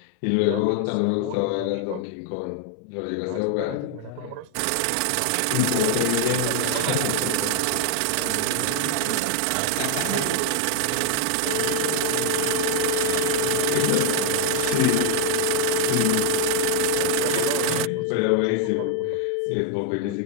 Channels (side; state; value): both; different; correlation 0.00